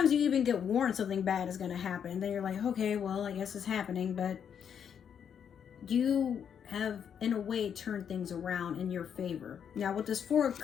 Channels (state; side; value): quieter; right; 8.0 dB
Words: you even get warned something bad is going to happen, and then you're like, okay, well, I guess it's happening. But you have, in a way, turned things around in your favor. Now, with this Four of